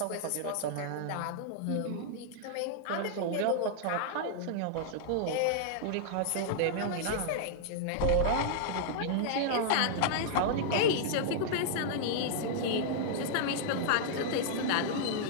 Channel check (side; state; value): both; different; correlation -0.01